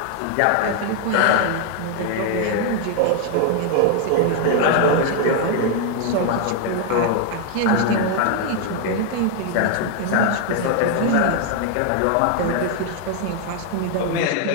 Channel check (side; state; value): both; different; correlation 0.00